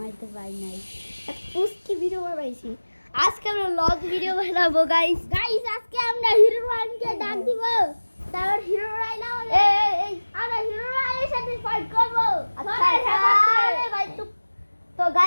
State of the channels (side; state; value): both; inverted; correlation -1.00